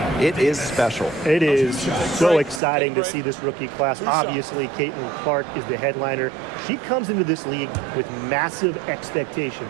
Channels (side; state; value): left; drops out; at 2.6 s